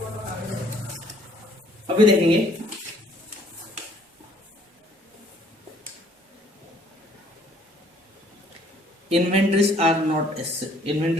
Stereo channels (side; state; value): both; normal; correlation 0.61